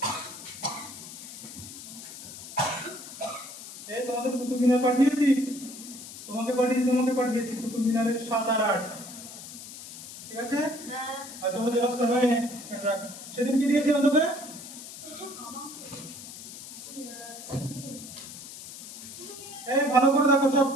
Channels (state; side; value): noise; left; hiss, 13 dB below the sound